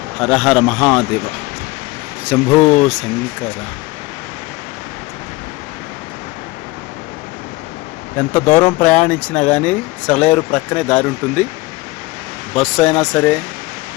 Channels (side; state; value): right; quieter; 21.8 dB